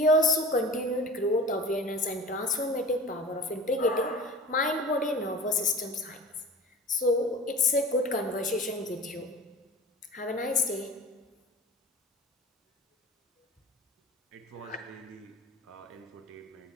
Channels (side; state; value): both; normal; correlation 0.38